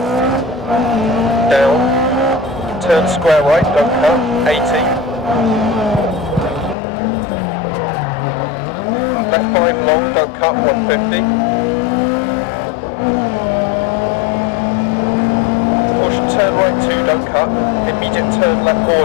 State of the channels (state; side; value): drops out; right; at 6.8 s